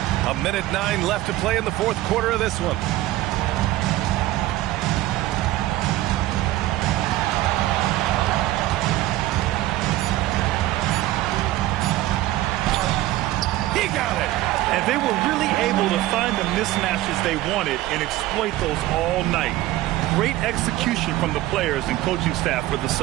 A minute 9 left to play in the 4th quarter of this one. He got it. And they were really able to find the mismatches they wanted and exploit those all night. Great execution from the players and coaching staff for the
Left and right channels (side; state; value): left; quieter; 16.0 dB